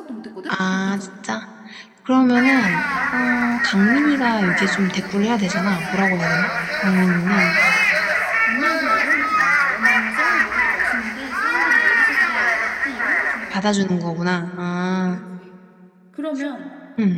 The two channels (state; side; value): identical; both; correlation 1.00